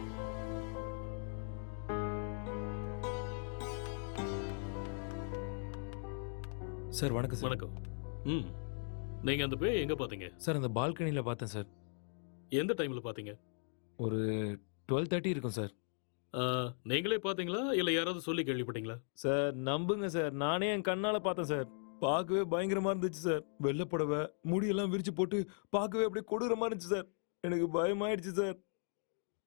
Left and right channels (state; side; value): silent; right; 52 dB below the other